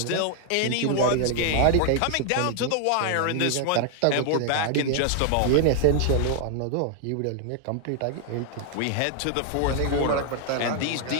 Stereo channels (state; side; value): different; both; correlation 0.00